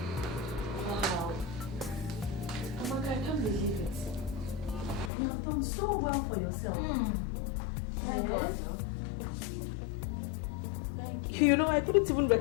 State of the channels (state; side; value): drops out; right; at 5.1 s